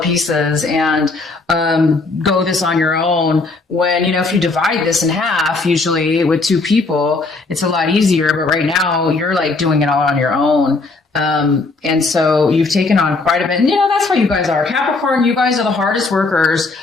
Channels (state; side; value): quieter; right; 3.7 dB